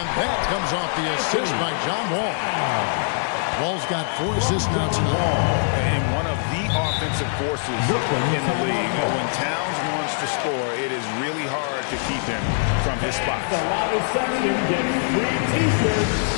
that comes off the assist by John Wall. Wall's got 4 assists now tonight. And one of the offensive forces in the league. When Towns wants to score, it is really hard to keep him from his spots. The loudest section gets free t-shirts.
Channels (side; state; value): right; silent; digital silence